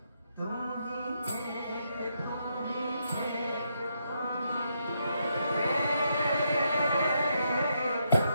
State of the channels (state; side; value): inverted; both; correlation -0.79